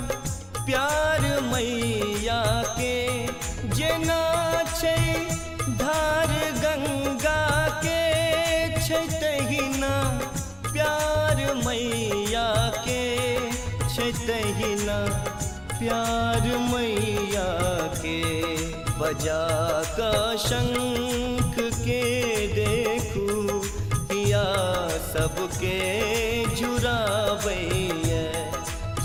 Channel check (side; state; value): both; identical; correlation 1.00